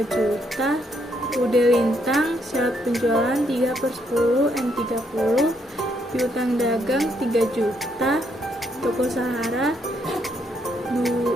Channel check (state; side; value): normal; both; correlation 0.74